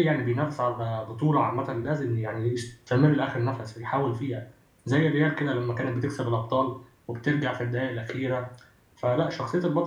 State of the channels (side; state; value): both; identical; correlation 1.00